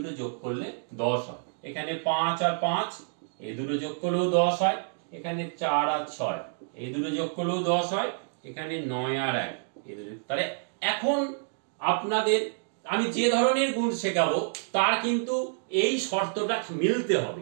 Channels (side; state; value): left; silent; digital silence